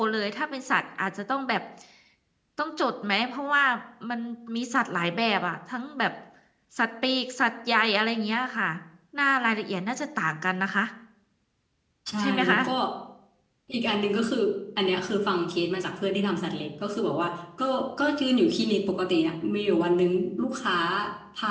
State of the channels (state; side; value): identical; both; correlation 1.00